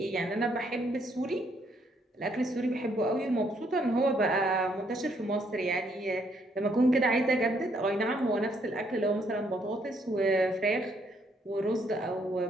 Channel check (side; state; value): both; normal; correlation 0.70